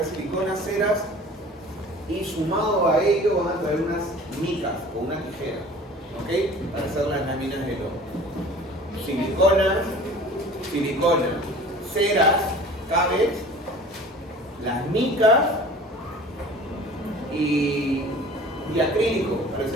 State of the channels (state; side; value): normal; both; correlation 0.44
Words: siliconas, ceras y sumado a ello van a traer unas micas o una tijera, ¿ok? Para hacer las láminas de lodo. Silicona, ceras, cables, las micas y acrílico para